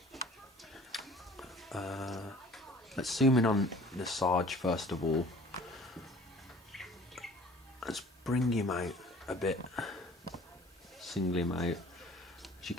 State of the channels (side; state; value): both; normal; correlation 0.49